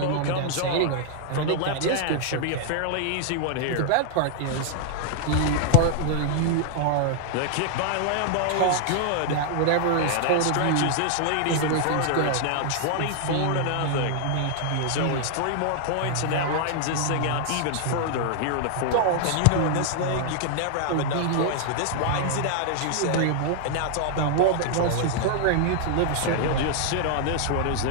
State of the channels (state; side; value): different; both; correlation -0.01